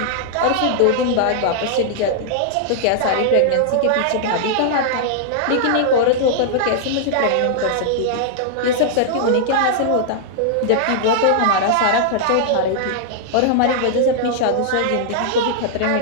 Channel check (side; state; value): both; different; correlation -0.01